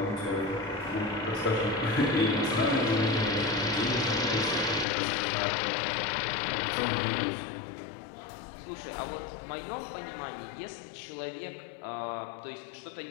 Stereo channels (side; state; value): right; drops out; at 4.9 s